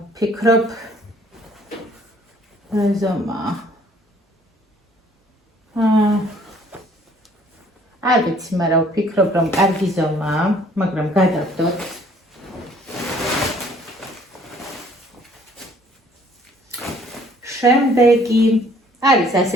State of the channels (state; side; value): normal; both; correlation 0.58